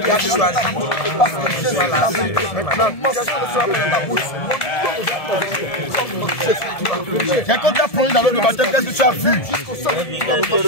il a choisi parce que je suis là. Maintenant, quand tu as plongé dans l'eau de baptême, qu'est-ce que tu as vu?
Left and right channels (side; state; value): right; late; 1.7 ms